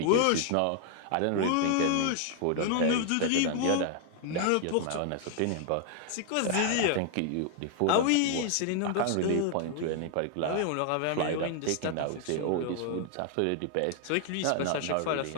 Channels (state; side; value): different; both; correlation 0.00